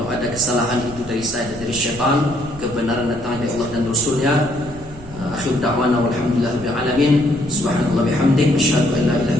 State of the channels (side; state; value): right; noise; rumble, 16 dB below the sound